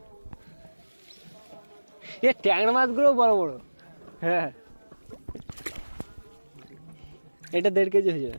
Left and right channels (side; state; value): both; inverted; correlation -1.00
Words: এ ট্যাংরা মাছগুলো বড় বড়। হ্যাঁ, এটা 1.5 কেজি হয়ে যাবে।